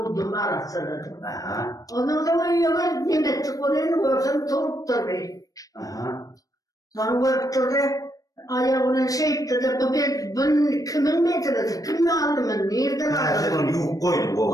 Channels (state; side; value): late; right; 0.17 ms